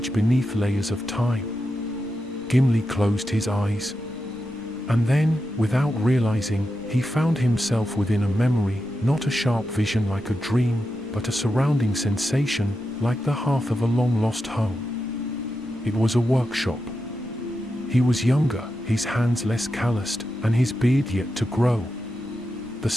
beneath layers of time. Gimli closed his eyes. And then, without realizing, he found himself within a memory, not a sharp vision like a dream, but a surrounding sensation, like the hearth of a long-lost home. It was a workshop. He was younger, his hands less calloused, and his beard yet to grow. The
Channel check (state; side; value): noise; right; rumble, 23 dB below the sound